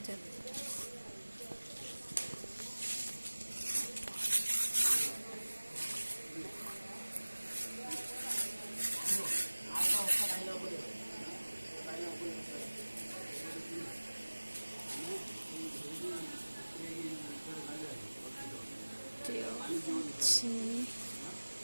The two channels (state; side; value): inverted; both; correlation -1.00